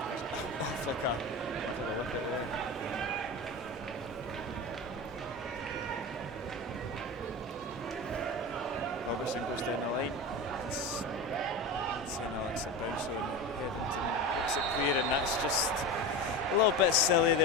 off like a wicket there. Robertson goes down the line. St Alex at bounce on Headington, looks it clear, and that's just a little bit silly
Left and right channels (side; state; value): both; normal; correlation 0.26